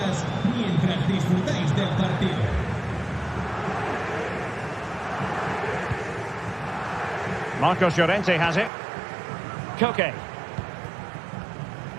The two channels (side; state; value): left; drops out; at 8.7 s